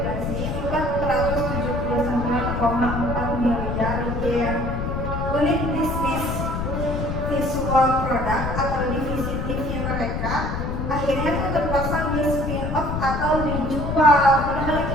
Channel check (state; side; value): noise; left; rumble, 2 dB below the sound